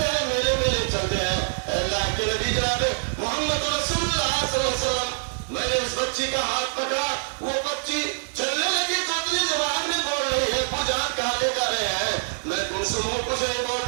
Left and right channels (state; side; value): silent; left; 62 dB below the other